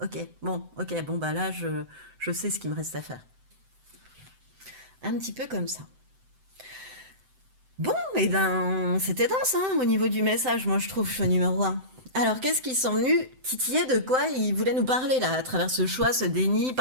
ok, bon, bah là, je sais ce qu'il me reste à faire. Un petit peu comme ça. Bon, et ben, c'était dense, hein, au niveau du message, moi, je trouve, choix numéro un. Alors, qu'est-ce qu'ils sont venus titiller de quoi ils voulaient nous parler, là, à travers ce choix, ce déni,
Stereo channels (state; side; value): late; left; 7.8 ms